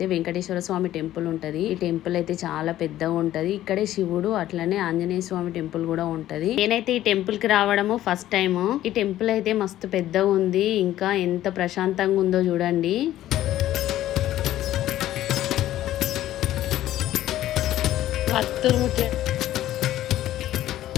వెంకటేశ్వర స్వామి టెంపుల్ ఉంటుంది. ఈ టెంపుల్ అయితే చాలా పెద్దగా ఉంటది. ఇక్కడే శివుడు అట్లనే ఆంజనేయ స్వామి టెంపుల్ కూడా ఉంటది. నేనైతే ఈ టెంపుల్ కి రావడము ఫస్ట్ టైం. ఈ టెంపుల్ అయితే మస్తు పెద్దగా ఉంది. ఇంకా ఎంత ప్రశాంతంగా ఉందో చూడండి.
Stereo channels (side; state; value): right; quieter; 13.5 dB